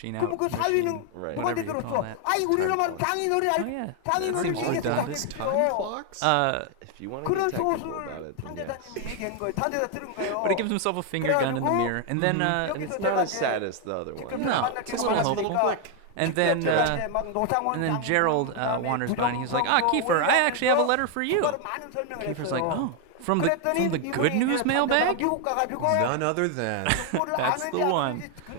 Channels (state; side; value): different; both; correlation 0.01